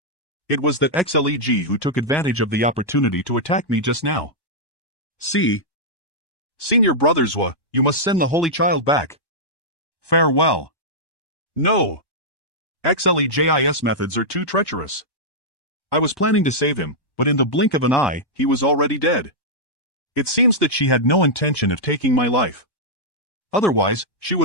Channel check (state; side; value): late; right; 1.1 ms